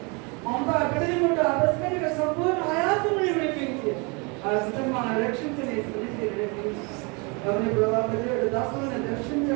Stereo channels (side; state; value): left; quieter; 30.6 dB